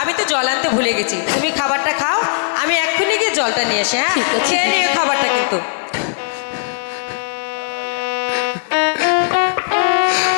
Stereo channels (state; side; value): silent; right; digital silence